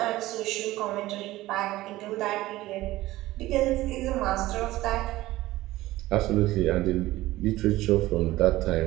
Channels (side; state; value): left; quieter; 17.1 dB